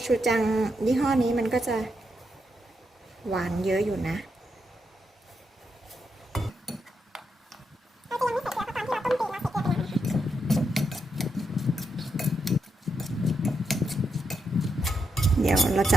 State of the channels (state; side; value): normal; both; correlation 0.82